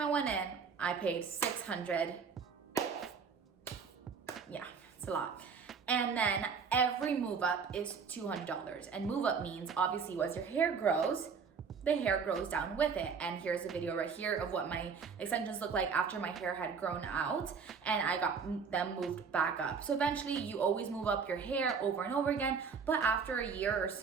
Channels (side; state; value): left; quieter; 5.8 dB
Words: went in, I paid $600. Yeah, it's a lot. And then every move up is $200. And move up means obviously as your hair grows, the hair grows down with it. And here's a video right here of what my extensions look like after my hair had grown out and I got them moved back up. So eventually you always move up your hair over and over again, but after a year or